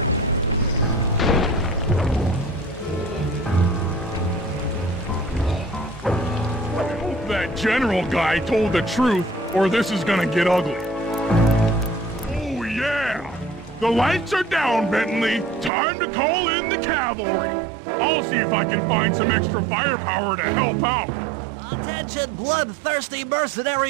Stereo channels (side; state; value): left; drops out; at 15.7 s